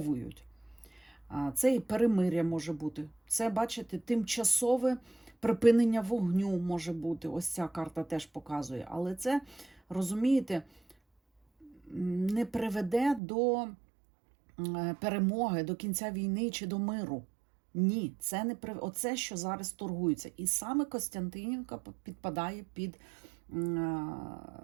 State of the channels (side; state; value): left; drops out; at 13.2 s